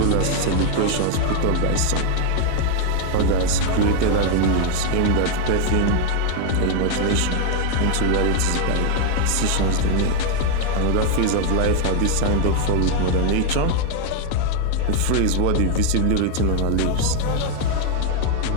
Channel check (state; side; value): different; both; correlation 0.01